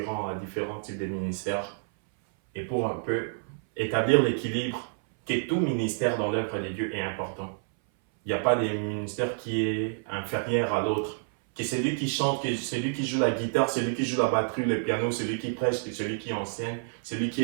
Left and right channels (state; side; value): silent; left; 57 dB below the other